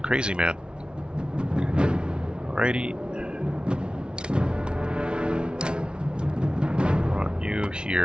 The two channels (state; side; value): late; left; 0.055 ms